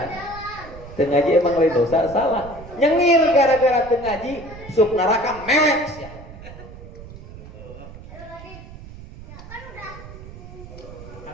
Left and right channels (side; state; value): right; noise; rumble, 15 dB below the sound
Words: teu ngaji emang lain dosa salah nyengir gara-gara teu ngaji sup neraka mewek sia.